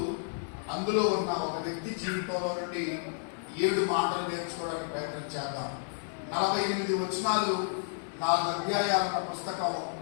అందులో ఉన్న ఒక వ్యక్తి జీవితంలో నుండి 7 మాటలు నేర్చుకోవడానికి ప్రయత్నం చేద్దాం. 48 వచనాలు, 4 అధ్యాయాలున్న పుస్తకం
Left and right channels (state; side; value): silent; right; digital silence